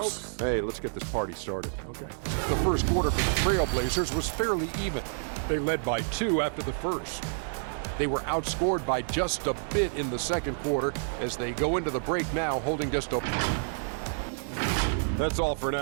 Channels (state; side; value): silent; left; digital silence